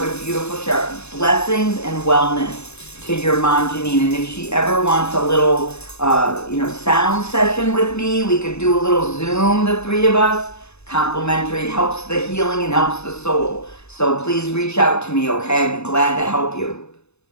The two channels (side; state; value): right; late; 0.80 ms